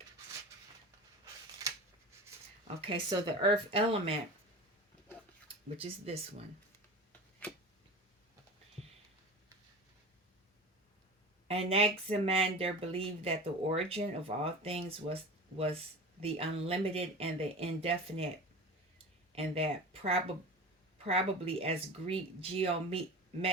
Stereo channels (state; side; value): normal; both; correlation 0.33